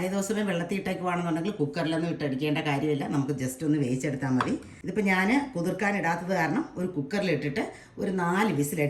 വെള്ളത്തിയിട്ടേക്കുവാണെന്നുണ്ടെങ്കിൽ കുക്കറിലൊന്നും ഇട്ടടിക്കേണ്ട കാര്യമില്ല, നമുക്ക് ജസ്റ്റ് ഒന്ന് വേവിച്ചെടുത്താൽ മതി. ഇതിപ്പോൾ ഞാൻ കുതിർക്കാനിടാത്തത് കാരണം ഒരു കുക്കറിലിട്ടിട്ട് ഒരു 4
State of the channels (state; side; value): identical; both; correlation 1.00